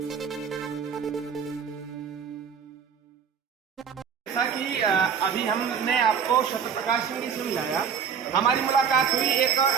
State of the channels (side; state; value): left; quieter; 7.0 dB